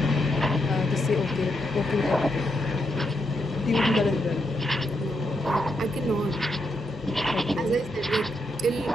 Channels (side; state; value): both; normal; correlation 0.81